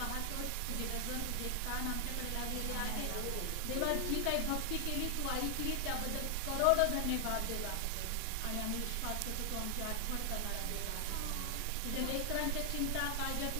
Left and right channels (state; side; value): different; both; correlation 0.00